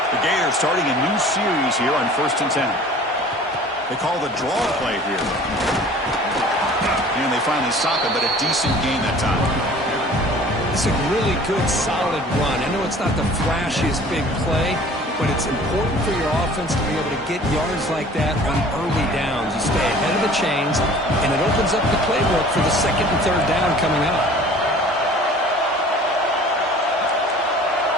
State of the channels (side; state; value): both; normal; correlation 0.47